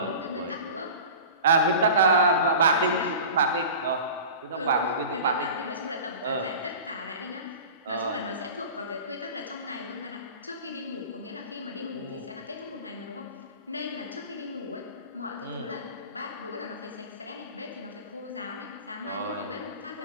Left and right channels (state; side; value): inverted; both; correlation -0.36